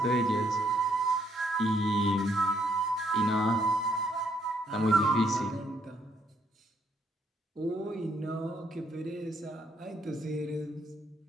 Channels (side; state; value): both; normal; correlation 0.71